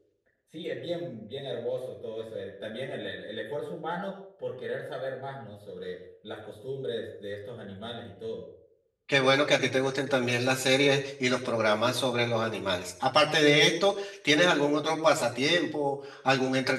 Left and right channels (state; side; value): identical; both; correlation 1.00